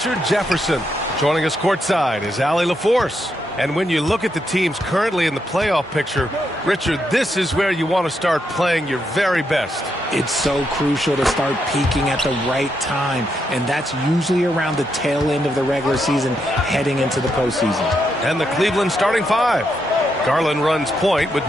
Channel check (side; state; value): both; normal; correlation 0.81